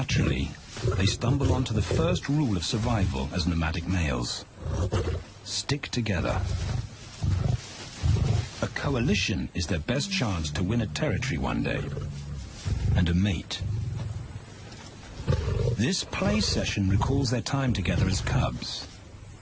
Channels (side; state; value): both; identical; correlation 1.00